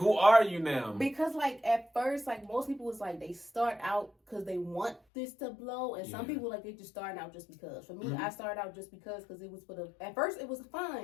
are you now? Because, like, at first, like, most people was like, they start out because they want this to blow. And some people, like, they just starting out just because. For me, I started out just because it was at first, it was fun.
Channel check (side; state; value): right; drops out; at 5.0 s